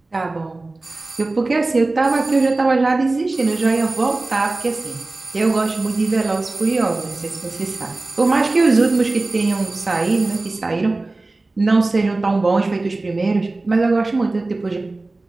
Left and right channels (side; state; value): left; quieter; 3.1 dB